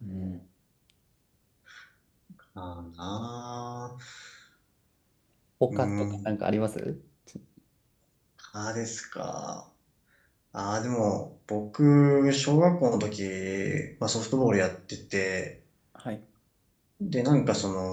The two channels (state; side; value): identical; both; correlation 1.00